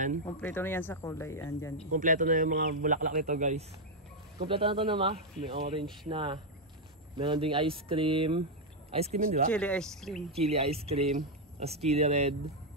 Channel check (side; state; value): both; normal; correlation 0.00